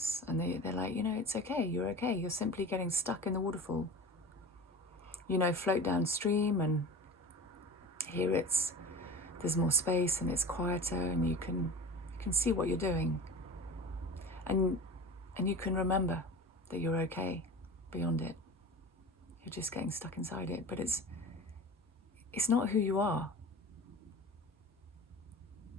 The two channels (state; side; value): normal; both; correlation 0.34